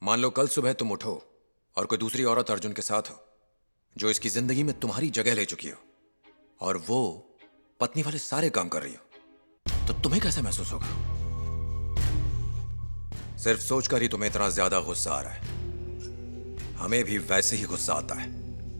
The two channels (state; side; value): inverted; both; correlation -1.00